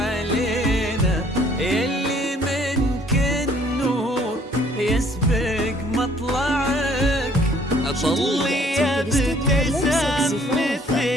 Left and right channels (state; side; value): normal; both; correlation 0.60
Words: يلي منك النور يسبق مطلعك. طلي يا ابتسام